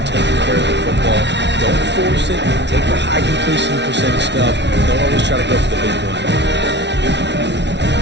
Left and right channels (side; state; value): left; late; 0.51 ms